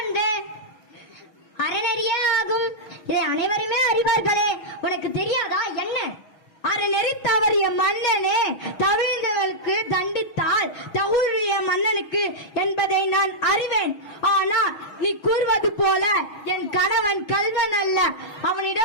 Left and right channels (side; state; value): right; late; 6.2 ms